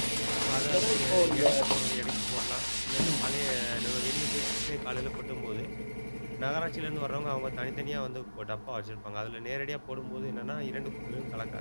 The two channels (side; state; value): both; inverted; correlation -1.00